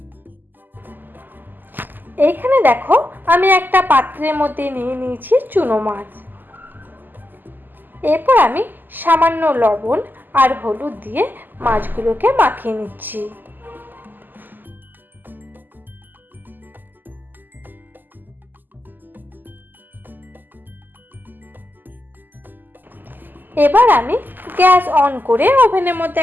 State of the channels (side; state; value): left; late; 0.089 ms